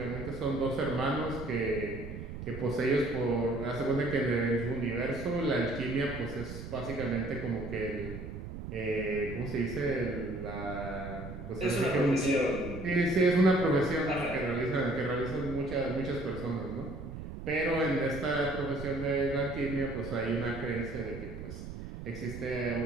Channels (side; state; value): right; noise; rumble, 9 dB below the sound